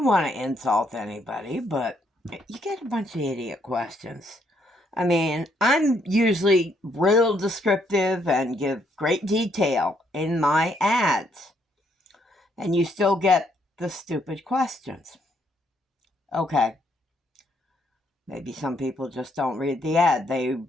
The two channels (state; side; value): normal; both; correlation 0.72